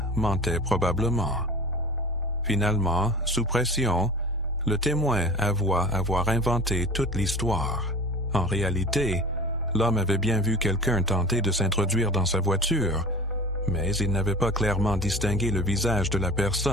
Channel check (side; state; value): both; normal; correlation 0.38